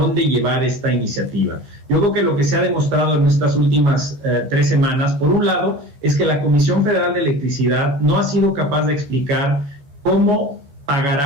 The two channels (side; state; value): left; late; 14 ms